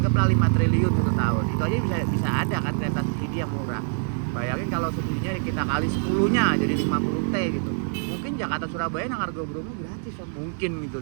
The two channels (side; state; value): left; silent; digital silence